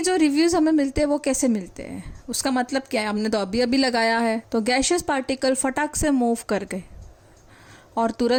जो रिव्यूज़ हमें मिलते हैं वो कैसे मिलते हैं, उसका मतलब क्या है? हमने तो अभी अभी लगाया है तो गैशियस पार्टिकल फटाक से मूव कर गए और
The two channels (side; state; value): both; identical; correlation 1.00